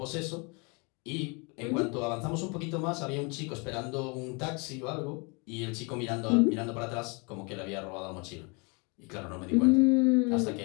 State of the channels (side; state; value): right; quieter; 31.6 dB